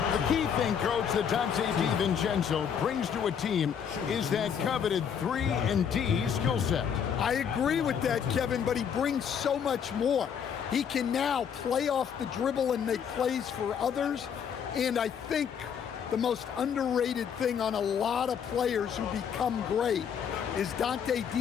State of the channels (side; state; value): right; quieter; 7.7 dB